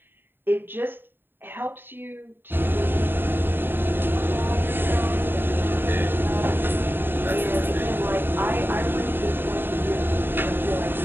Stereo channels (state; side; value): late; left; 0.099 ms